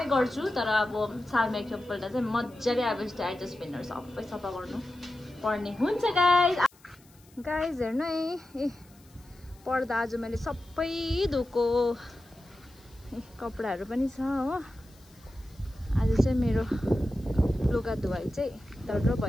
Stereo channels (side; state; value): left; noise; hiss, 28 dB below the sound